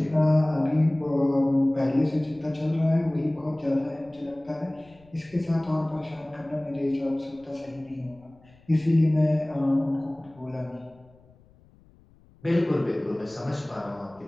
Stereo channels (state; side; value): noise; left; rumble, 28 dB below the sound